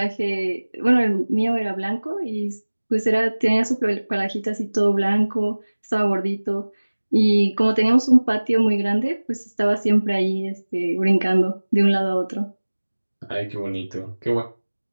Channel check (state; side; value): inverted; both; correlation -1.00